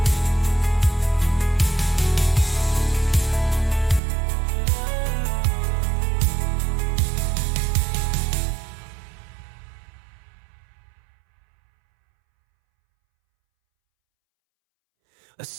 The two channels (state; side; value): drops out; left; at 4.0 s